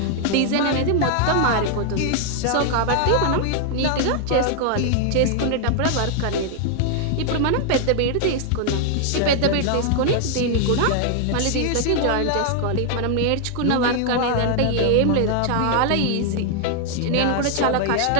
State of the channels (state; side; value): different; both; correlation 0.00